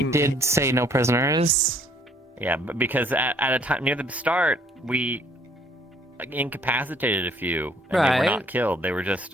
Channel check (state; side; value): normal; both; correlation 0.62